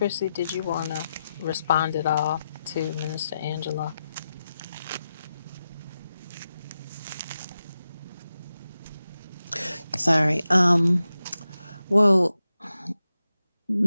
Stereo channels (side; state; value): both; inverted; correlation -0.90